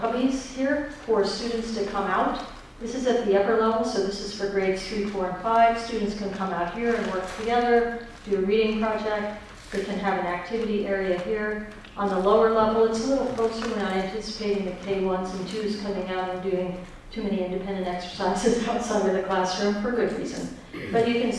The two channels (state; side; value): identical; both; correlation 1.00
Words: cubbies here for students to come out. This is at the upper level, so this is for grades 3, 4, and 5. Students can come out here and work together, do a reading project. They can have an activity area here. On the lower level, it's a little closer. We're not anticipating the K1s and 2s coming out and doing too many independent exercises outside of the classroom for good reason. But you can